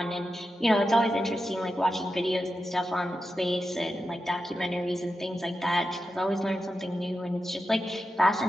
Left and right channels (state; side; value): normal; both; correlation 0.90